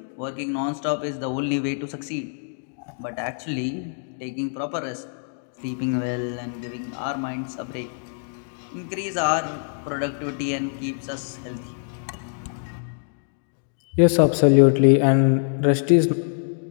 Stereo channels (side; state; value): right; silent; digital silence